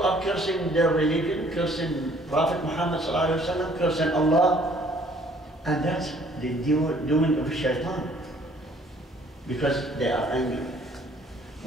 are cursing their religion, cursing Prophet Muhammad Sallallahu Alaihi Wasallam, cursing Allah. And that's the doing of shaitan. Because they are angry.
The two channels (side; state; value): both; normal; correlation 0.59